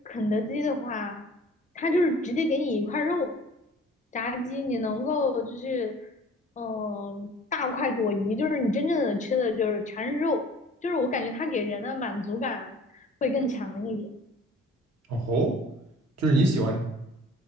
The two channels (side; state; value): both; normal; correlation 0.48